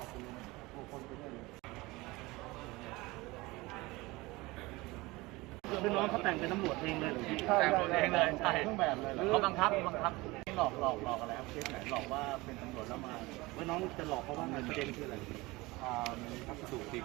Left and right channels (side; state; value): left; quieter; 21.8 dB